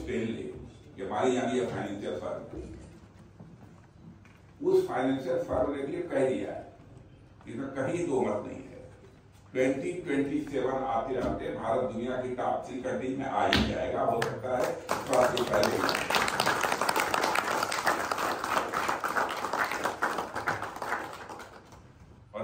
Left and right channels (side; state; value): both; identical; correlation 1.00